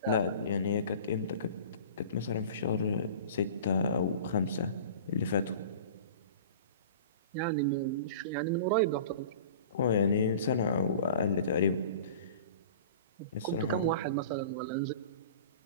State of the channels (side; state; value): both; inverted; correlation -0.39